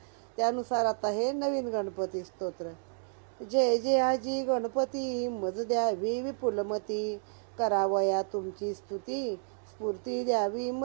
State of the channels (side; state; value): left; silent; digital silence